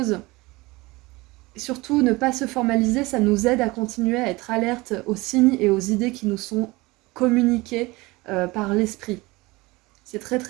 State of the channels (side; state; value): left; quieter; 22.2 dB